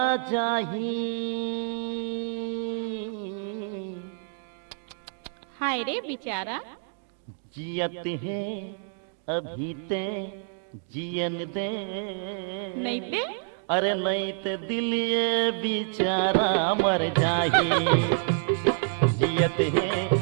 जाही हाय रे बेचारा जियत है अभी ते जियन दे नहीं ते अरे नहीं ते दिल ये बेचारा मर जाही जियत है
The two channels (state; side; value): silent; left; digital silence